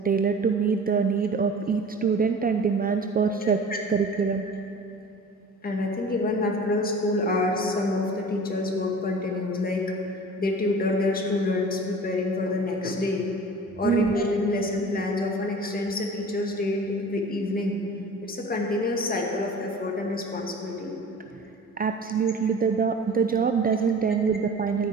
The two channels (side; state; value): both; normal; correlation 0.41